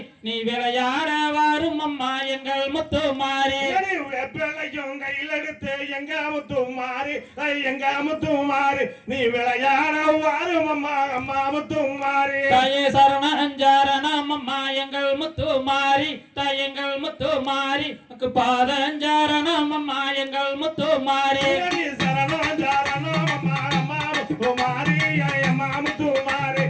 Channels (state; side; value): identical; both; correlation 1.00